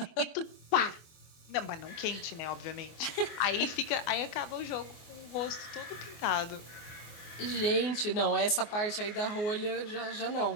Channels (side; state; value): right; late; 24 ms